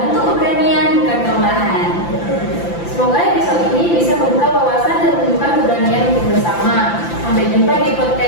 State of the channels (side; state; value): right; late; 5.9 ms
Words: keberanian, bukan kelemahan. semoga episode ini bisa membuka wawasan dan menunjukkan keberanian untuk bersama. Sampai jumpa di